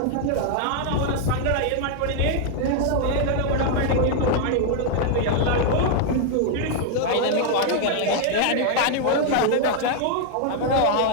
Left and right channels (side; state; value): both; different; correlation 0.00